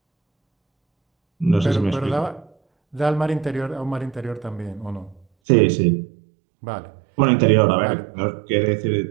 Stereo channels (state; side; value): drops out; left; at 5.2 s